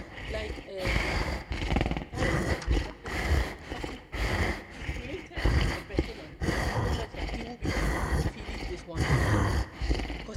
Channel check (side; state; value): both; identical; correlation 1.00